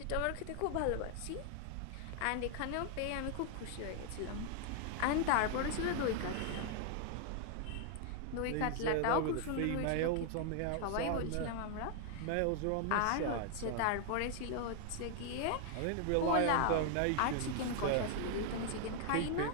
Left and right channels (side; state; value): both; different; correlation 0.00